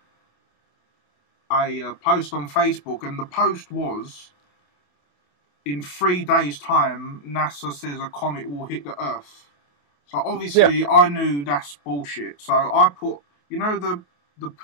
post on Facebook, and the post was, in 3 days' time, NASA says a comet will hit the Earth. So obviously, I knew that's bullshit. So I put, the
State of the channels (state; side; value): late; right; 28 ms